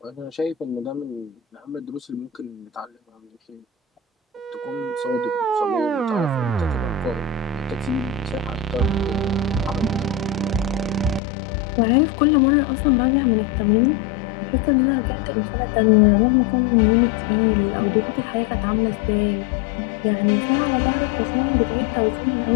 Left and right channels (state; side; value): drops out; right; at 11.2 s